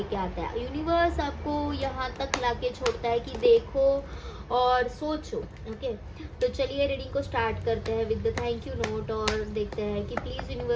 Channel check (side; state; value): both; identical; correlation 1.00